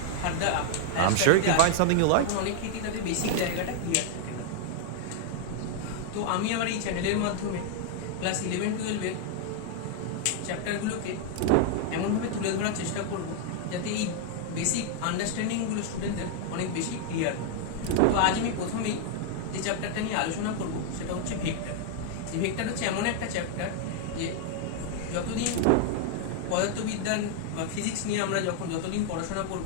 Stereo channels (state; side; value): different; both; correlation 0.00